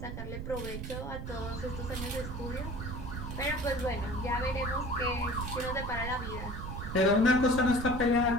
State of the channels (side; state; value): right; noise; rumble, 6 dB below the sound